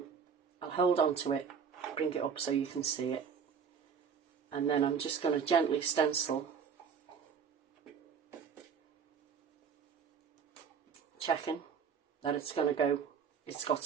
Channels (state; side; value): quieter; left; 6.7 dB